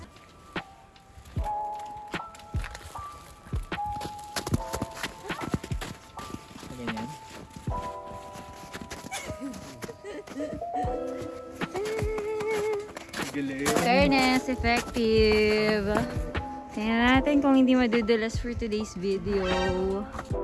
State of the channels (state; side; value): identical; both; correlation 1.00